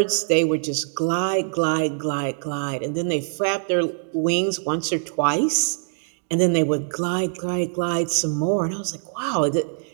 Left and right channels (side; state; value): left; silent; digital silence